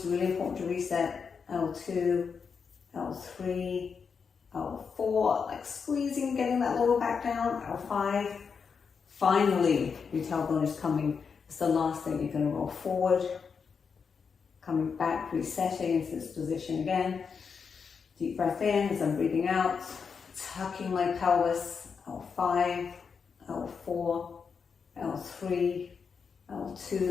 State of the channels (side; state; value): right; quieter; 5.9 dB